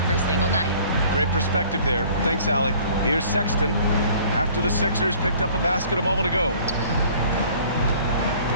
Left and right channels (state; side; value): inverted; both; correlation -0.52